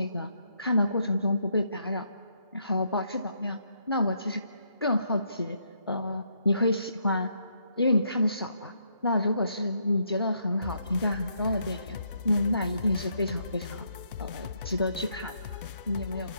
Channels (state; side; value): inverted; both; correlation -0.75